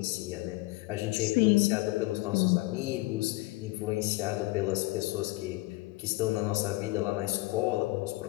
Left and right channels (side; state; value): right; quieter; 21.4 dB